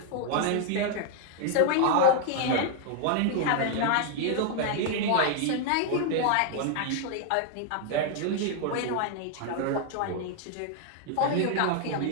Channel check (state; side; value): different; both; correlation 0.00